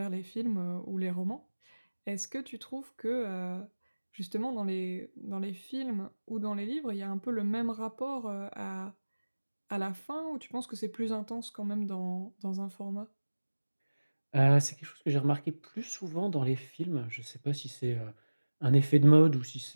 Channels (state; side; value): inverted; both; correlation -1.00